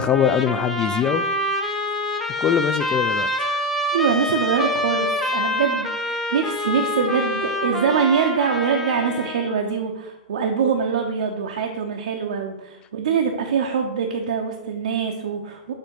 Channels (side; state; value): both; normal; correlation -0.04